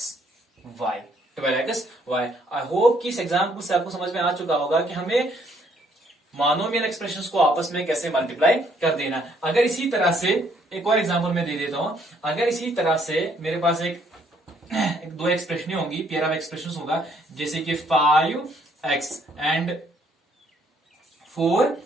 वाई। आई होप कि इस एग्जाम्पल से आपको समझ में आ चुका होगा कि हमें मोनोमियल एक्सप्रेशंस को आपस में कैसे मल्टीप्लाई कर देना। अगर इसी तरह से एक और एग्जाम्पल मैं दे देता हूं, अगर इसी तरह से मेरे पास एक दो एक्सप्रेशन होंगी, पेयर ऑफ एक्सप्रेशंस होगा, जैसे कि 5x एंड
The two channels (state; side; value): normal; both; correlation 0.67